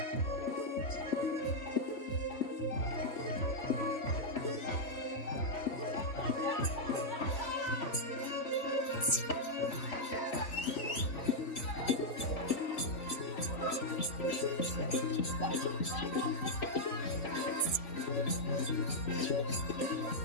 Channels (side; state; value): right; late; 4.0 ms